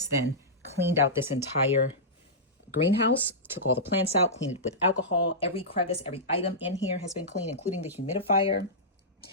then cleaned out this entire greenhouse, took all the plants out, cleaned it with alcohol. Every crevice, every item in here has been cleaned, including the humidifier.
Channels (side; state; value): both; normal; correlation -0.15